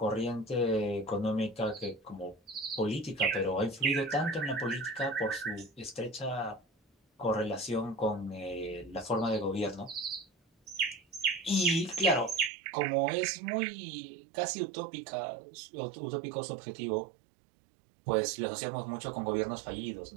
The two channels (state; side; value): drops out; left; at 12.5 s